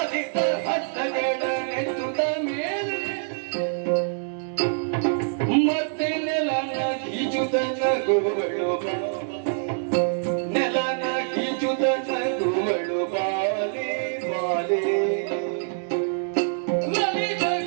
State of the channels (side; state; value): left; silent; digital silence